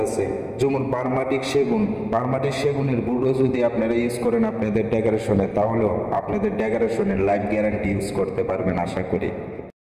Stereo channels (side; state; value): both; identical; correlation 1.00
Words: আছে, যেমন পারমাটিক সেগুনের বুটও যদি আপনারা ইউজ করেন আপনাদের ডেকোরেশনে, তাহলেও আপনাদের ডেকোরেশনের লাইফ গ্যারান্টি ইউজ করতে পারবেন আশা করি।